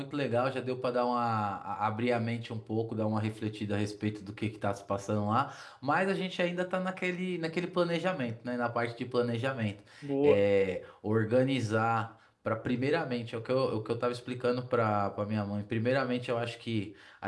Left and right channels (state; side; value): identical; both; correlation 1.00